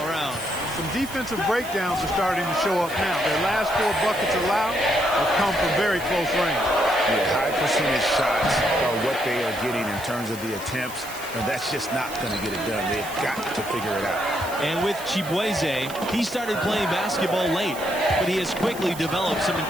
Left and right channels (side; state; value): right; noise; hiss, 14 dB below the sound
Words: around. Some defensive breakdowns are starting to show up now. Their last 4 buckets allowed have come from very close range. Yeah, high percentage shots are what they are getting in terms of the attempts, and that's just not going to get it done. They've got to figure it out. And with Chiboise, he started playing basketball late, but he has quickly developed some